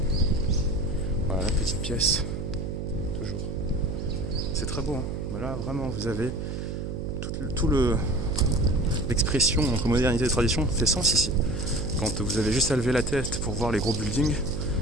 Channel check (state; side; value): noise; right; hum, 5 dB below the sound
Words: Voilà la petite pièce. Toujours. C'est très beau, hein. Bah là vraiment vous avez tout l'expression entre modernité et tradition fait sens ici. Quand vous avez juste à lever la tête pour voir les gros buildings